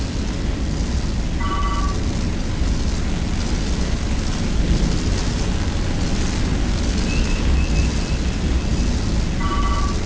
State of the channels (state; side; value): identical; both; correlation 1.00